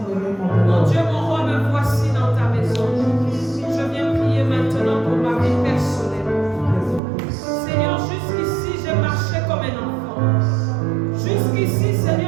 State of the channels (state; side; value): drops out; left; at 7.0 s